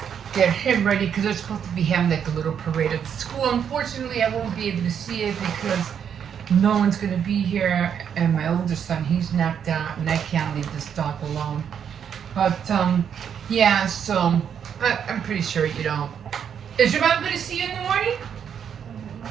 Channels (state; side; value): quieter; left; 8.1 dB